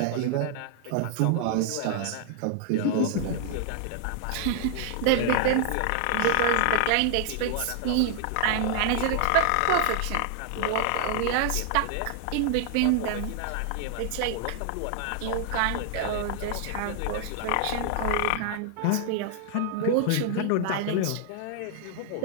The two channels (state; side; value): different; both; correlation 0.00